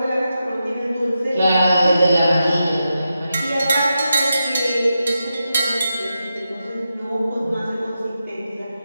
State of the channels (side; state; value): both; inverted; correlation -0.88